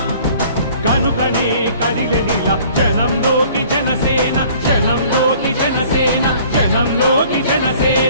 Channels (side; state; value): both; inverted; correlation -0.53